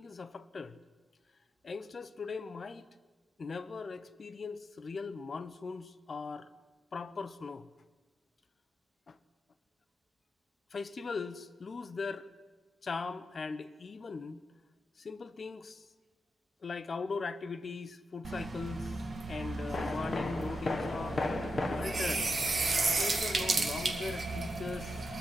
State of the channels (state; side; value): normal; both; correlation 0.86